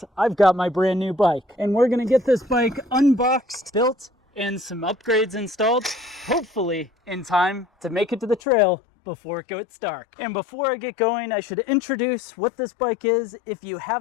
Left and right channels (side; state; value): right; drops out; at 8.4 s